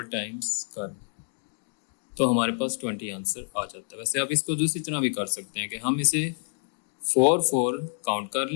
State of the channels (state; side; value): silent; right; digital silence